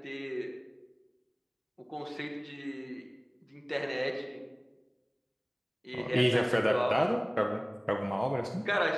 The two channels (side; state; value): both; identical; correlation 1.00